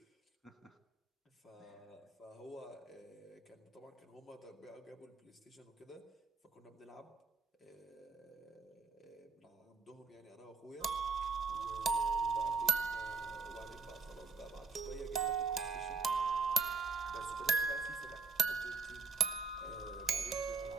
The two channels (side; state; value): left; quieter; 4.8 dB